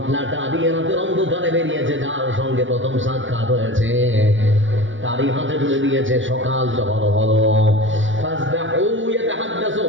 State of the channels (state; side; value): late; left; 0.56 ms